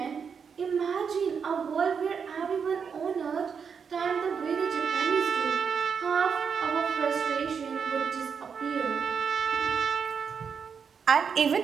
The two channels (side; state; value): left; quieter; 6.4 dB